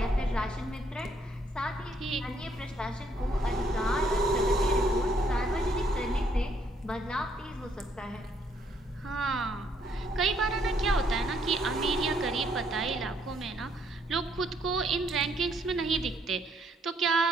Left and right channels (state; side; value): normal; both; correlation 0.69